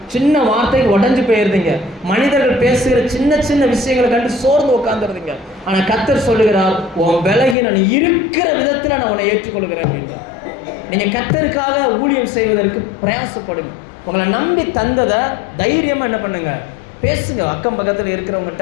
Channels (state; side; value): drops out; right; at 7.6 s